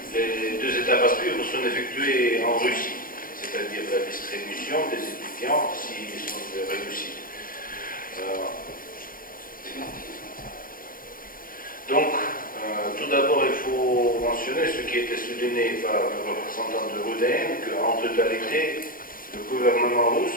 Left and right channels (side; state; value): right; late; 0.41 ms